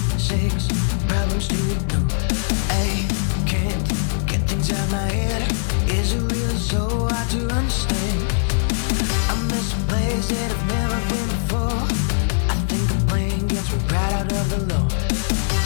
6 problems to ignore. I can't get things out my head. Is it really so hard to understand? I miss a place that I've never been before. I think the plane gets me right out of the low.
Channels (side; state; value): right; silent; digital silence